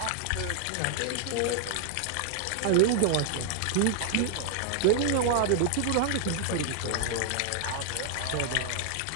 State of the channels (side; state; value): both; different; correlation 0.00